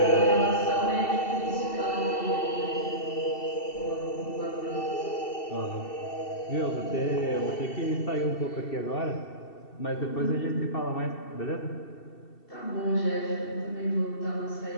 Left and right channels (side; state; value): right; late; 2.7 ms